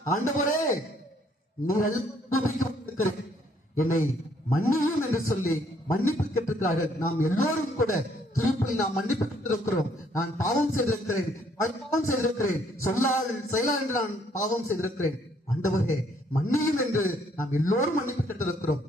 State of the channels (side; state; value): both; normal; correlation 0.66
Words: ஆண்டவரே, நீர் என்னை மன்னியும் என்று சொல்லி மன்னிப்பு கேட்டிருக்கிறார்கள். நாம் எல்லோரும் கூட திருப்பி நாம் மன்னிப்பு கேட்டிருக்கிறோம். நான் பாவம் செய்திருக்கிறேன், பாவம் செய்திருக்கிறேன், சொல்லால் செயலால் என்று நான் பாவம் செய்திருக்கிறேன். ஆண்டவரே மன்னியும் என்று நாம் எல்லோரும் மன்னிப்பு கேட்டிருக்கிறோம்.